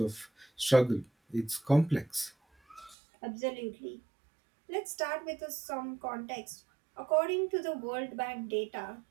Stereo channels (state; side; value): drops out; left; at 3.0 s